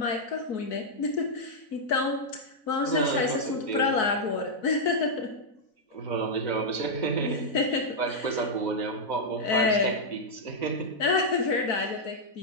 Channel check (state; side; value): late; right; 4.0 ms